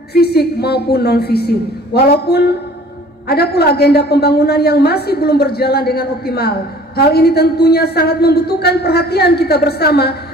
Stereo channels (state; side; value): normal; both; correlation 0.50